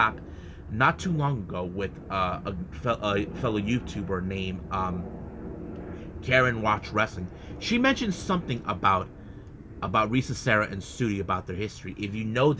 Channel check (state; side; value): identical; both; correlation 1.00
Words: not too long ago with a fellow YouTuber named Karen Watch Wrestling. She mentioned something about Risa Sera and Sudi, about their history. If you know